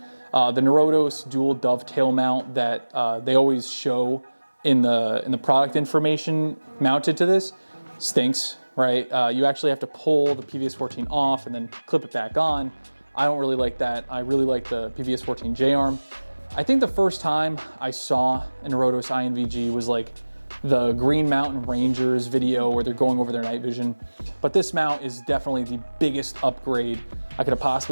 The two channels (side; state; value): both; inverted; correlation -1.00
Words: The Norotos dual dovetail mount that they always show in the product information mounted to this stinks, right? You actually have to pull the PVS-14 off and then clip it back on. I don't really like that. I really like the PVS-14 J-arm. I think the first time I saw a Norotos INVG was like the Green Mountain Rangers video where they're going over their night vision. But this mount is definitely the biggest upgrade I could have